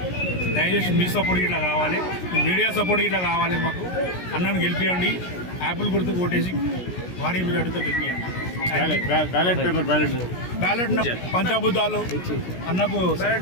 దయచేసి మీ సపోర్ట్ ఇట్లా కావాలి, మీడియా సపోర్ట్ ఇట్లా కావాలి. మాకు అన్నను గెలిపియండి, యాపిల్ గుర్తుకు ఓటేసి భారీ మెజార్టీతో గెలిపియండి. బ్యాలెట్ పంచభూతాలు అన్నకు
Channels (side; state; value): right; late; 17 ms